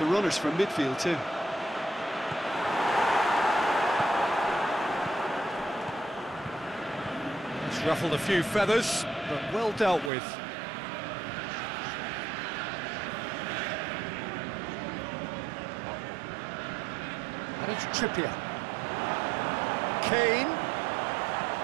runners from midfield too. It's ruffled a few feathers, but well dealt with. And it's Trippier. Kane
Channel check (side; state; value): left; drops out; at 10.1 s